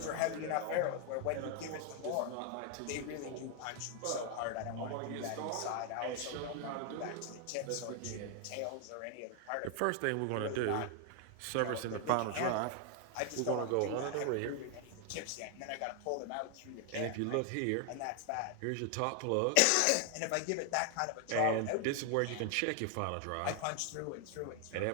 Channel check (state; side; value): different; both; correlation 0.00